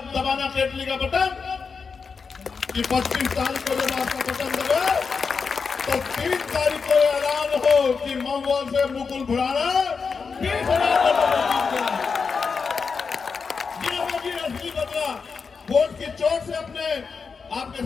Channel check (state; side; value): quieter; right; 5.3 dB